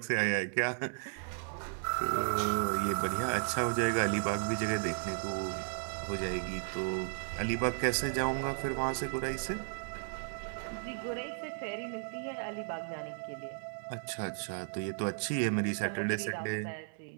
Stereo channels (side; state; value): left; silent; 55 dB below the other